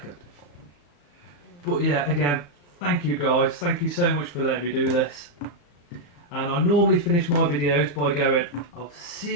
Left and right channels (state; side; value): late; right; 35 ms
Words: But yeah, again, thank you guys. Thank you so much for letting me do this. And I normally finish my videos by going, I'll